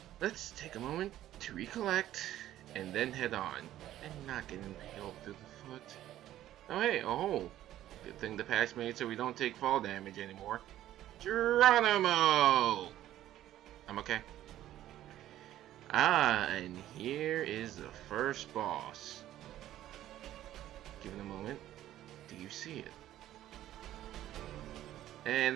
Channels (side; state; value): left; quieter; 13.2 dB